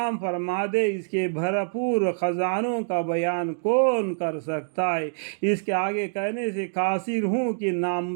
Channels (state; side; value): silent; left; digital silence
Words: فرما دے اس کے بھرپور خزانوں کا بیان کون کر سکتا ہے۔ اس کے آگے کہنے سے قاصر ہوں کہ